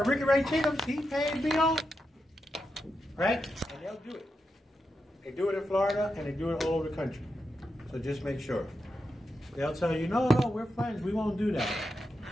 Ricky Ray Chickums, he paid me off. Right? And they'll do it. They do it in Florida, and they do it all over the country. So just make sure. They'll tell you, no, we're friends. We won't do that.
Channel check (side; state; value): both; normal; correlation 0.87